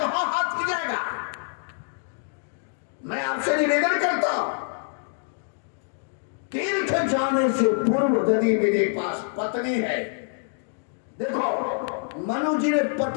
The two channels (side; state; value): right; silent; 58 dB below the other